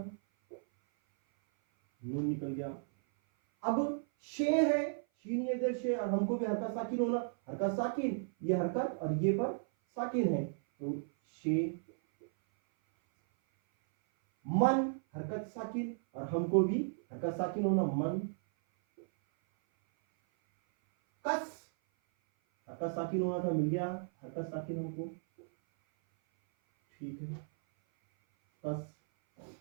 नून निकल गया। अब शे है, शीन ये इधर शे, और हमको भी हरकत साकिन होना, हरकत साकिन, ये हरकत और ये पर साकिन है, तो शे। मन हरकत साकिन, और हमको भी हरकत साकिन होना, मन। कस हरकत साकिन होना था, मिल गया हरकत साकिन हमको, ठीक है, कस।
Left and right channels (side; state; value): left; silent; 55 dB below the other